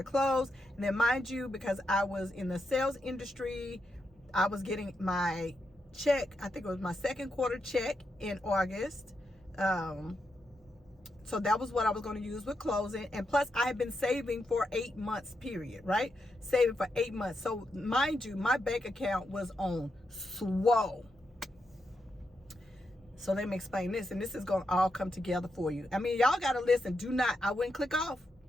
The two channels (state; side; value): normal; both; correlation 0.84